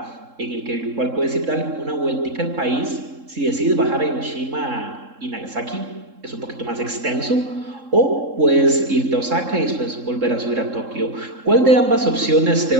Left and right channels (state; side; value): late; left; 3.7 ms